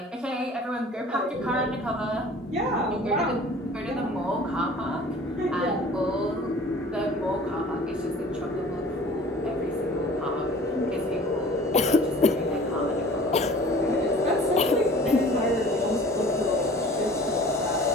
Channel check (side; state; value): both; normal; correlation 0.47